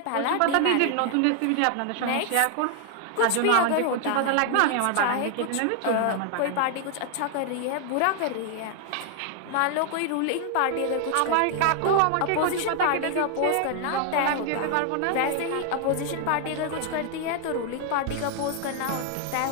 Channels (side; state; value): both; different; correlation 0.00